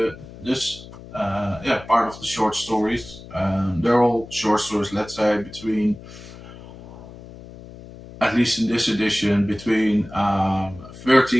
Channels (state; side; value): noise; left; hum, 16 dB below the sound